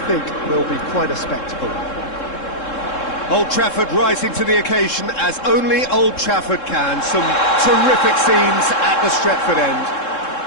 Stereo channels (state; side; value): late; right; 3.7 ms